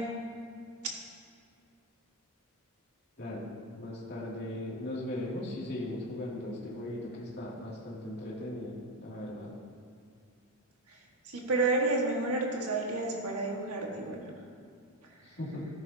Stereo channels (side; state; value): both; normal; correlation 0.10